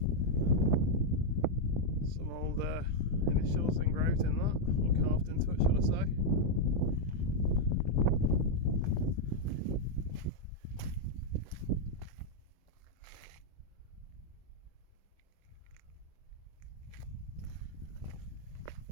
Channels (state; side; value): late; right; 24 ms